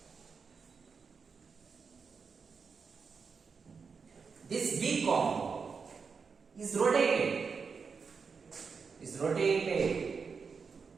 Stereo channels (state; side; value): quieter; left; 5.4 dB